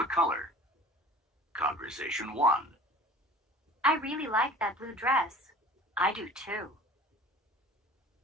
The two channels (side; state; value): both; normal; correlation 0.44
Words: color. Conversation 1. I really like that blue dress. I do too.